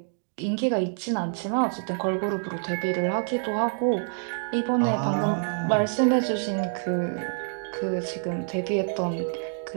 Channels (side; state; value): left; silent; digital silence